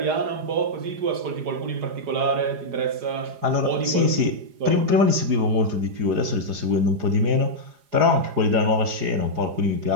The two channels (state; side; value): late; left; 4.9 ms